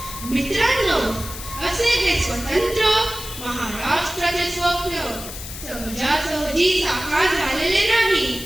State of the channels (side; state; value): left; noise; hiss, 11 dB below the sound